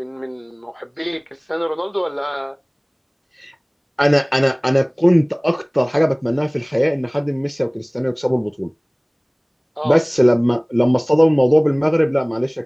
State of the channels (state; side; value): identical; both; correlation 1.00